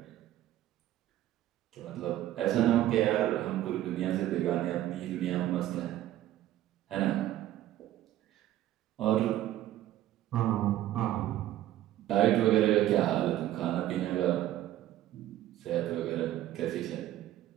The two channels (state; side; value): quieter; left; 13.4 dB